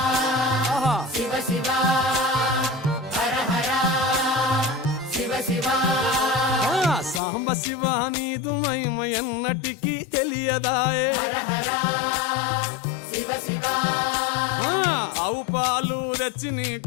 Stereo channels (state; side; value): drops out; right; at 7.2 s